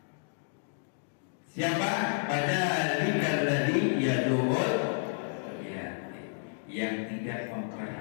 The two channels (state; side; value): silent; right; digital silence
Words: Siapa? Fadzalika alladzi yad'ul yang tidak